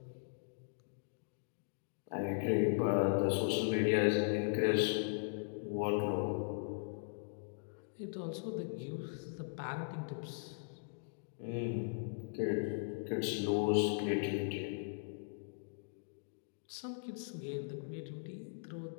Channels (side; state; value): right; silent; digital silence